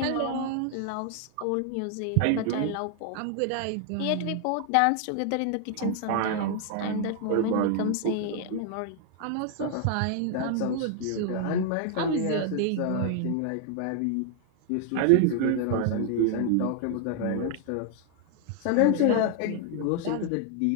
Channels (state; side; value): different; both; correlation 0.00